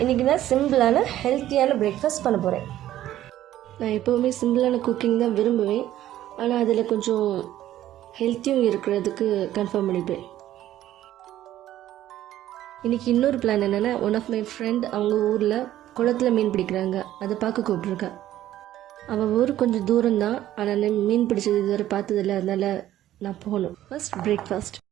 இன்றைக்கி நான் சிம்பிளான ஹெல்த்தியான பிரேக்ஃபாஸ்ட் பண்ண போகிறேன். நான் எப்போவுமே சிம்பிளான குக்கிங் தான் விரும்புவேன். ஆனால் அதில் கொஞ்சம் ஹெல்த்தியும் இருக்கிறதுக்கு கன்ஃபார்ம் பண்ணிப்பேன். இன்றைக்கி இன்னொரு பிளான் என்னென்னா, ஒன் ஆஃப் மை ஃப்ரெண்ட் அவங்க ஊரில் குளத்தில் மீன் பிடிக்கிறாங்க. அதை பார்க்க கூப்பிட்ருக்கேன். அவள் ஊர் கொஞ்சம் தூரம்தான், ஆனால் மீன் பிடிச்சது இதுவரை பார்த்ததில்லை. அதனால் நான் போகணும். ஃபர்ஸ்ட் பிரேக்ஃபாஸ்ட்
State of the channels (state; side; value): quieter; left; 13.1 dB